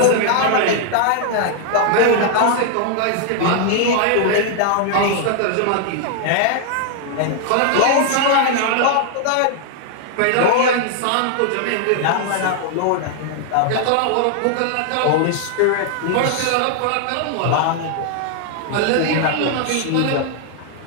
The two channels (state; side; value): different; both; correlation 0.00